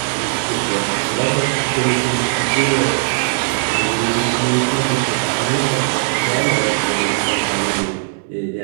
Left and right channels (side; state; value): left; silent; digital silence